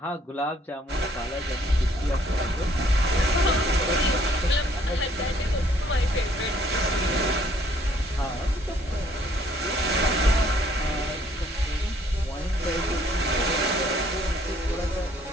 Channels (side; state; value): both; normal; correlation 0.63